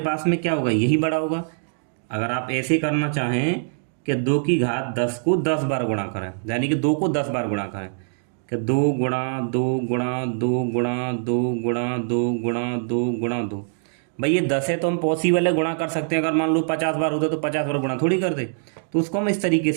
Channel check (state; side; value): silent; left; digital silence